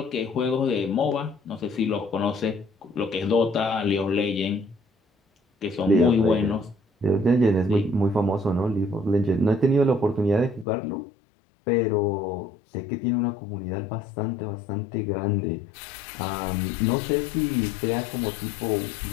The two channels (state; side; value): drops out; right; at 10.7 s